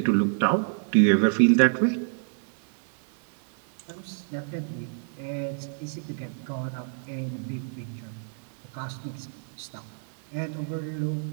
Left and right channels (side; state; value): left; silent; 59 dB below the other